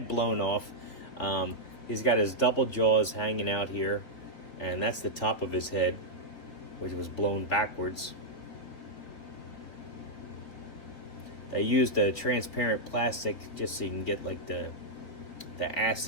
blown off. He's got his double jaws hanging out here, and that's the top of his head, which was blown backwards. They used a transparent plastic just so you can get like the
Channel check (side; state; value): right; late; 3.9 ms